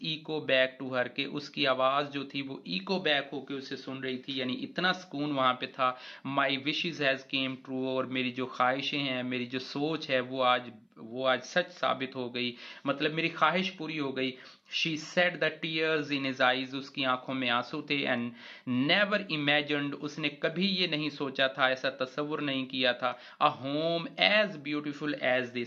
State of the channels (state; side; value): identical; both; correlation 1.00